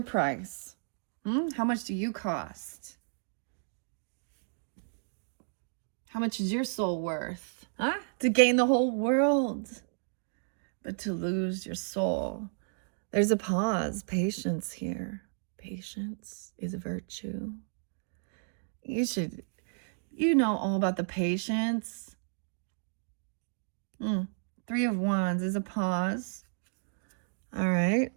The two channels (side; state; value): left; silent; digital silence